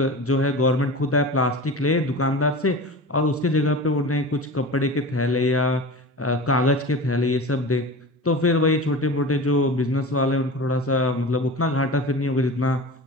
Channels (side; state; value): both; normal; correlation 0.32